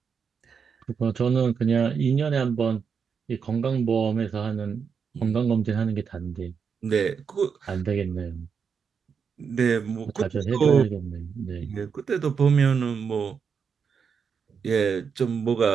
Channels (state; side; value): quieter; left; 6.3 dB